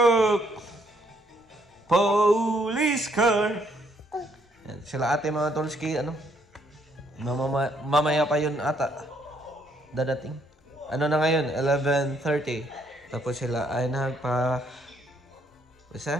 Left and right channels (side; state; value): both; normal; correlation 0.70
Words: Police car! Yan, sila ate mga tools ano? Mamaya pa yun ata. Dadating. Ano na ngayon? 11:30. Tapos sila ay nagpa...